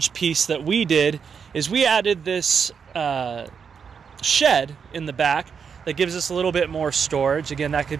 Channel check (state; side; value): quieter; left; 6.5 dB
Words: piece that we did is we added this shed in the back that gives us a little bit more storage. Again, that could